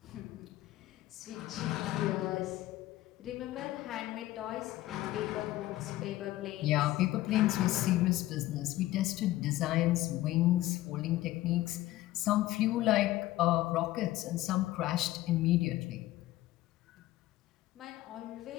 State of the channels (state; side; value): quieter; right; 16.1 dB